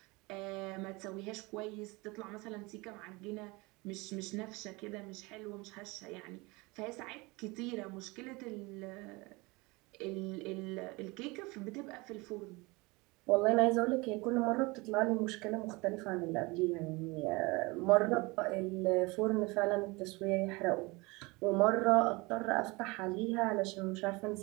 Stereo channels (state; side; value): quieter; left; 24.8 dB